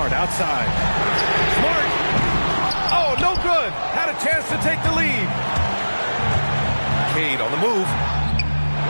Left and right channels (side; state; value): both; inverted; correlation -1.00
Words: outside. Smart. Oh, no good. Had a chance to take the lead. Cade on the move.